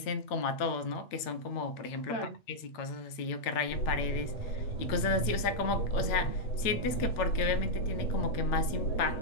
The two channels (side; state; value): right; late; 8.8 ms